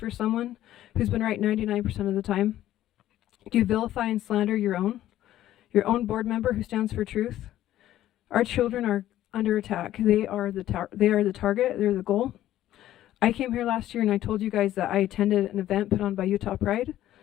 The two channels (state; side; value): quieter; right; 13.3 dB